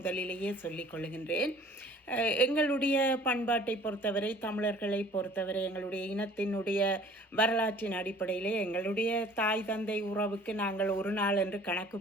சொல்லிக் கொள்கின்றேன். எங்களுடைய பண்பாட்டை பொறுத்தவரை, தமிழர்களை பொறுத்தவரை, எங்களுடைய இனத்தினுடைய வரலாற்றின் அடிப்படையிலே எங்களுடைய தாய் தந்தை உறவுக்கு நாங்கள் ஒரு நாள் என்று கணக்கு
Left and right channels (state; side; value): normal; both; correlation 0.50